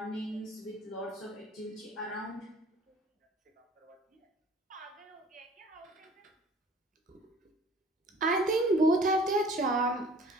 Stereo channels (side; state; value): both; normal; correlation 0.50